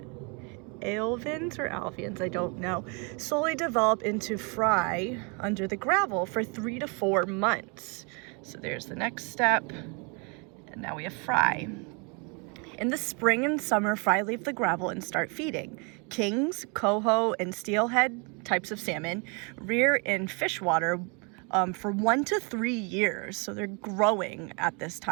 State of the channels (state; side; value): quieter; left; 33.2 dB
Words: Alveans or alveans, I don't know, slowly develop into fry under the gravel for 3 to 4 months. So there's the next step, and now we have fry. In the spring and summer, fry leave the gravel and start feeding. Kings, coho, and steelhead types of salmon rear in fish water for 1 to 3 years, so they're growing at this